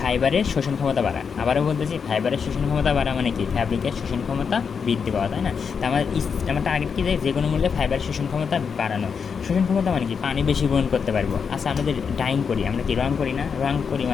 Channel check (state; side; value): quieter; right; 6.2 dB